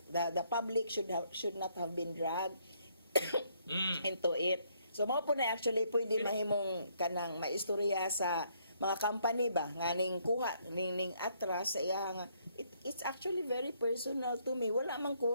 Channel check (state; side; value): inverted; both; correlation -0.70